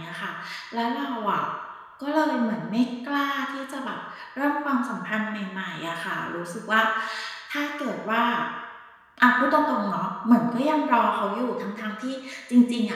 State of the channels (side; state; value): both; identical; correlation 1.00